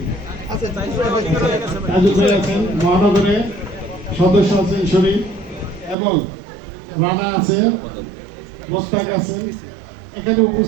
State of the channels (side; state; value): left; drops out; at 6.0 s